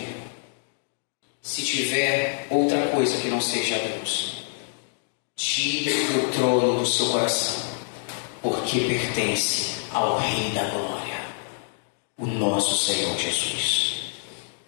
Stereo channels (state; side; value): silent; right; digital silence